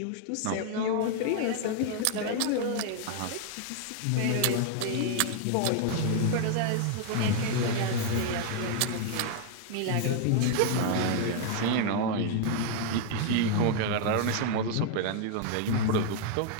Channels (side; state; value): both; different; correlation 0.00